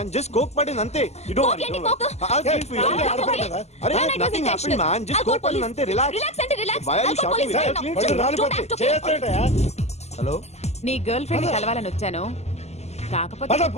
Just coke పడింది అంతే. You don't worry. Don't worry. I'll clean for you. అరే nothing happened, man. Just coke పడింది అంతే. Relax. Why are you shouting me? వాళ్ళు రాలిపోతే చేస్తాడయా? హలో, నీ గర్ల్ ఫ్రెండ్ కలవాలని వచ్చాను, కాకపోతే పద,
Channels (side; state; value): right; late; 0.32 ms